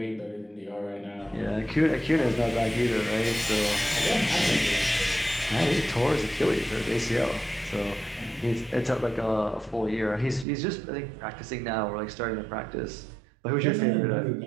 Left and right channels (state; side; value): drops out; left; at 10.5 s